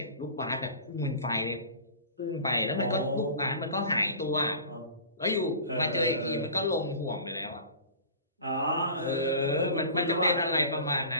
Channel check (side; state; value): both; inverted; correlation -0.40